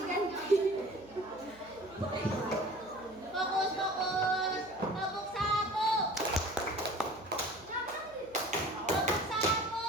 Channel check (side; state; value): right; noise; hum, 24 dB below the sound